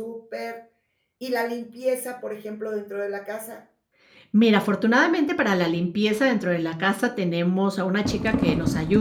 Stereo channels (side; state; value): both; identical; correlation 1.00